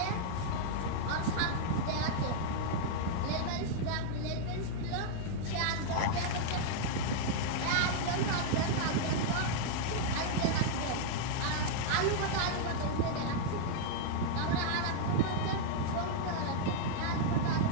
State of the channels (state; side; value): different; both; correlation -0.01